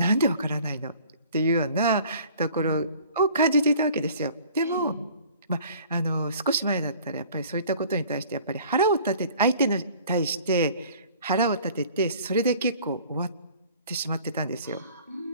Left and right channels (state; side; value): inverted; both; correlation -0.50